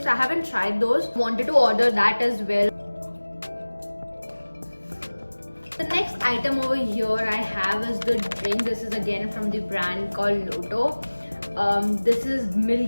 I haven't tried those. Wanted to order that as well. The next item over here I have is the drink. This is again from the brand called Lotto. This is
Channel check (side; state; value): both; inverted; correlation -1.00